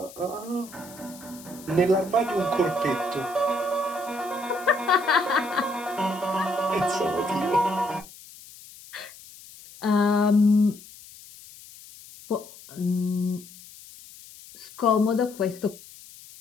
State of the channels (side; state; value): left; noise; hiss, 19 dB below the sound